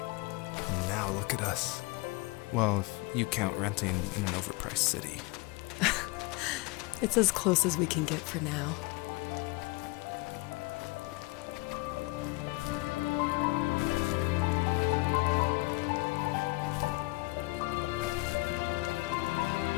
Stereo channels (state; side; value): quieter; right; 24.5 dB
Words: And now look at us. Well, if you count renting in an overpriced city. It's as close as we can get for now.